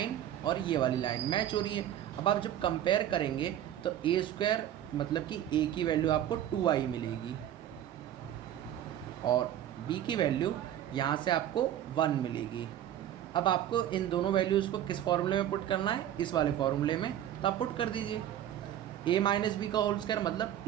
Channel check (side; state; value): left; quieter; 11.3 dB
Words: और ये वाली लाइन मैच हो रही है। अब आप जब कंपेयर करेंगे तो a² मतलब कि a की वैल्यू आपको 2y मिलेगी और b की वैल्यू यहाँ से आपको 1 मिलेगी। अब आपको इन दोनों वैल्यूज़ को किस फॉर्मूले में पुट करना है, इस वाले फॉर्मूले में, तो आप पुट कर दीजिए। a माइनस बी का होल स्क्वायर मतलब